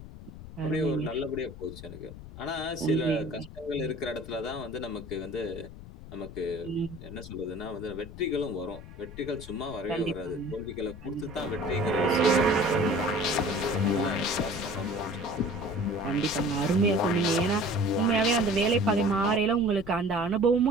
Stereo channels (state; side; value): noise; left; rumble, 14 dB below the sound